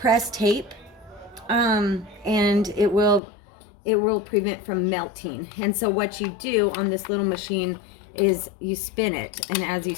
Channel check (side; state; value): right; drops out; at 3.2 s